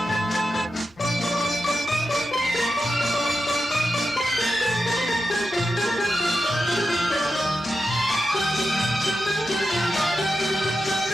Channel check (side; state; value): both; normal; correlation 0.90